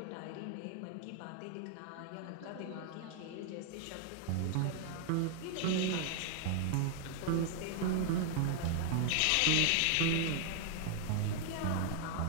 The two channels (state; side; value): different; both; correlation 0.00